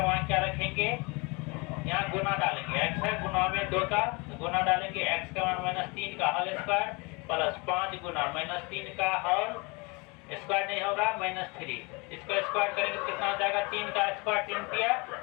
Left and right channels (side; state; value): right; quieter; 28.2 dB